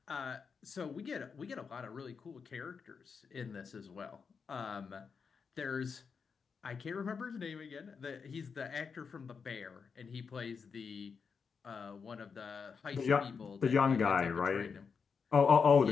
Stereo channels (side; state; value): right; quieter; 5.7 dB